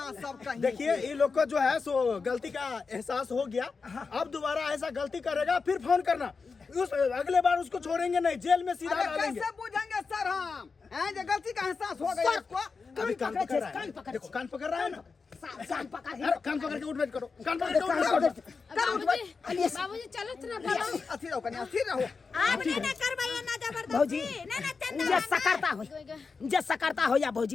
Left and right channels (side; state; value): right; quieter; 4.8 dB